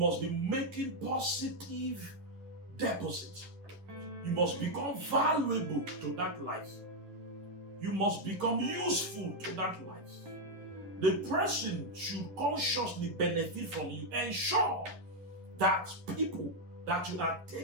be making positive deposits. You must become valuable to that life. You must become useful to that life. The person should consciously benefit from you. Ensure that people that you are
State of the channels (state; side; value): late; left; 11 ms